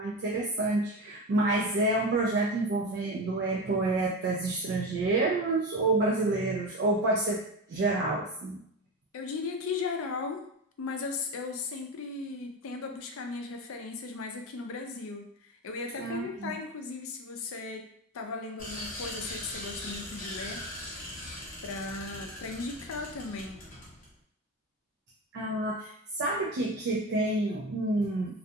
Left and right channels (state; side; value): normal; both; correlation 0.23